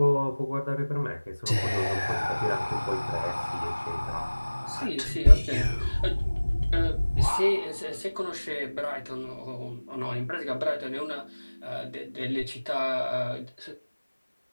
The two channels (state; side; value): inverted; both; correlation -1.00